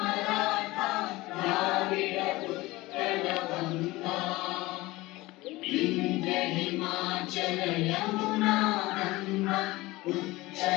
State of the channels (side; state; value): right; quieter; 20.0 dB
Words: द्राविड उत्कल गंगा विंध्य हिमाचल यमुना गंगा